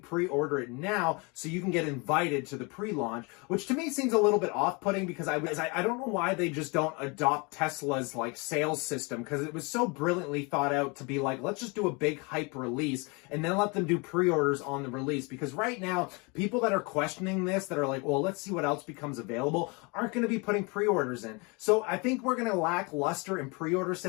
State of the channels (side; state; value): right; quieter; 29.5 dB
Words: it now so you can get invited to the pre-launch, which to me seems a little bit off-putting, because I don't know why they just don't adopt Tesla Tesla's like sales system, because it was so brilliantly thought out to be like, let's just do a big hype release and then let them do pre-orders on the release. Because right now, people that are questioning this, that are like, well, let's see what else becomes available, aren't going to be putting pre-orders in. So I think we're going to lack luster in pre-order